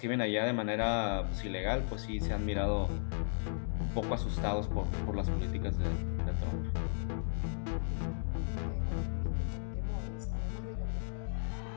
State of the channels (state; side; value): silent; right; digital silence